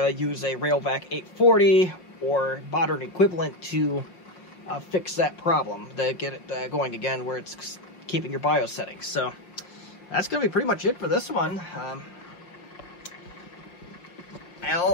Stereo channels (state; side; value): late; right; 5.6 ms